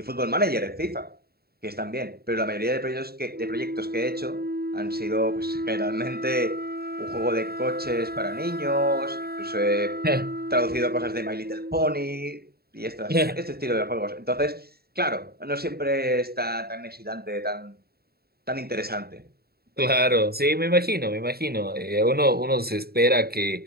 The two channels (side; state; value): left; late; 0.45 ms